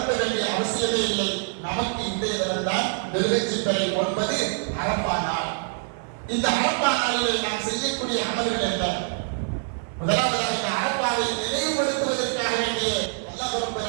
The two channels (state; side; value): silent; left; 56 dB below the other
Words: வேண்டிய அவசியமே இல்லை. நமக்கு இன்றைய தினம்தான் துல்ஹஜ் 9 அரஃபா நாள். இந்த அரஃபா நாளில் நாம் செய்யக்கூடிய அமல்கள் என்ன? முதலாவதாக அரஃபாவை நினைவுபடுத்துவதற்காக வேண்டிய அல்லாஹ் ரப்பல்